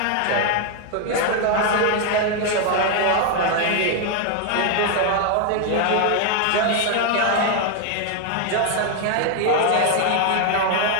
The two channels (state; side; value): different; both; correlation 0.01